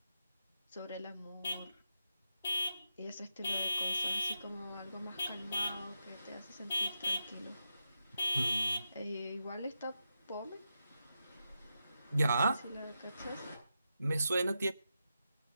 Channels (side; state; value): both; inverted; correlation -0.87